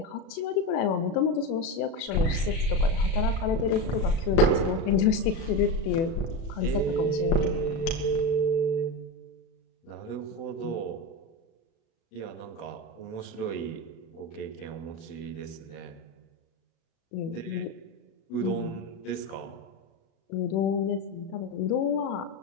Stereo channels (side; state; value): right; late; 36 ms